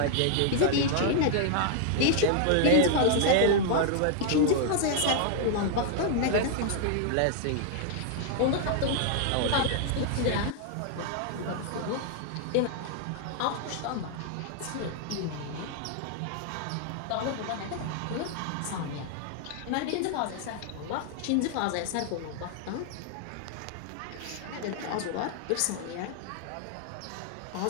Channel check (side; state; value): both; different; correlation 0.00